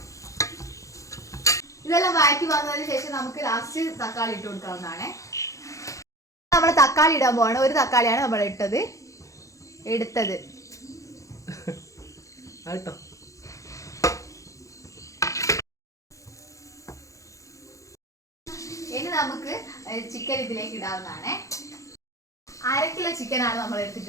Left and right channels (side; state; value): right; late; 0.15 ms